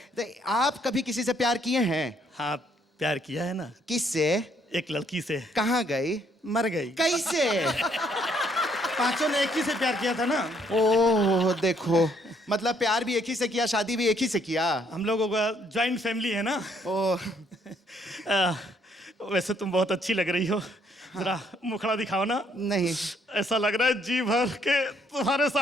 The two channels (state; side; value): normal; both; correlation 0.68